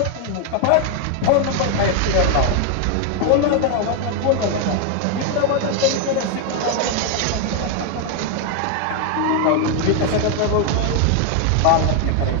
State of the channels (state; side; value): different; both; correlation 0.01